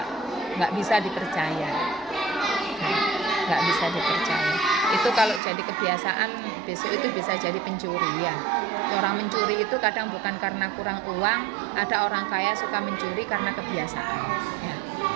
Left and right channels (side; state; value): left; drops out; at 5.4 s